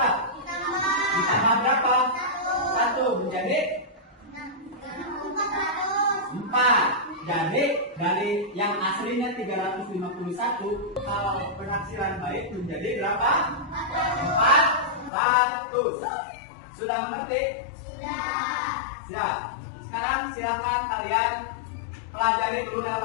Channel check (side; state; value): right; drops out; at 15.1 s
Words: Ditambah berapa? 1 menjadi 4. Jadi dari yang aslinya 351, kalau penaksiran baik menjadi berapa? 400. Sudah mengerti? Siap. Sekarang silakan kalian pelajari dulu